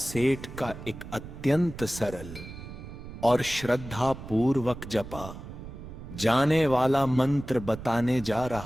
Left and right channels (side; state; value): right; noise; rumble, 12 dB below the sound